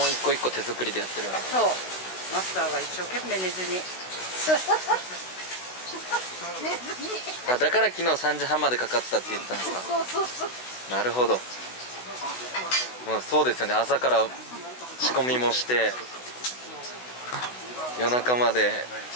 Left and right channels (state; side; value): late; right; 16 ms